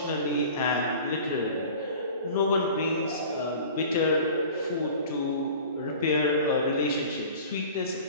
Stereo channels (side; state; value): both; inverted; correlation -0.42